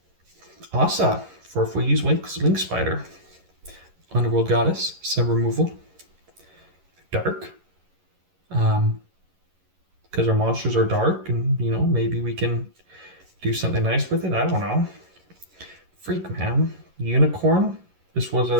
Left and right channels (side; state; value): left; late; 11 ms